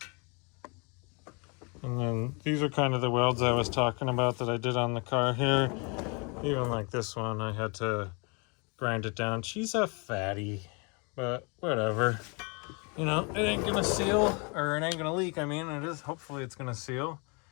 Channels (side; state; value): right; quieter; 32.5 dB